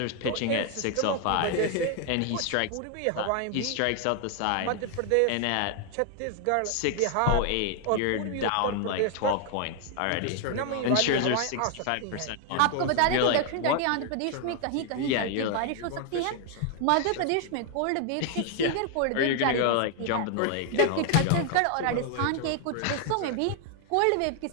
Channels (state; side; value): different; both; correlation 0.00